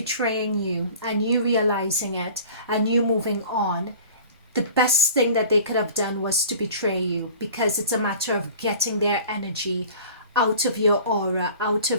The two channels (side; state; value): both; inverted; correlation -0.45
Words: you and you realizing it and you moving on, the best thing that they could have done was to betray you, because it's a matter of getting their energy out of your aura, out